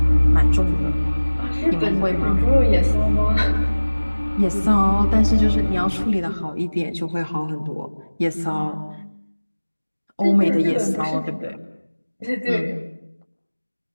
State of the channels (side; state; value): both; inverted; correlation -1.00